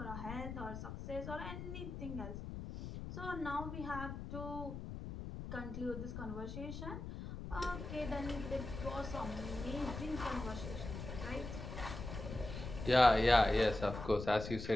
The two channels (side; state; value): left; noise; rumble, 8 dB below the sound